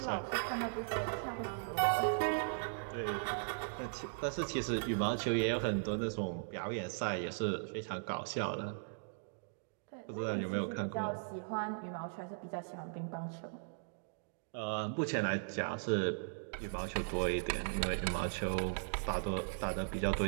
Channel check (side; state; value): left; silent; digital silence